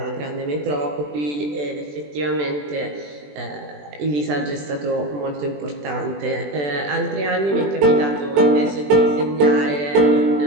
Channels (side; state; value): left; late; 20 ms